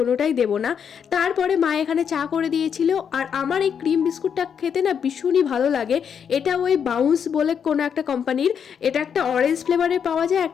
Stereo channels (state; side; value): quieter; right; 7.5 dB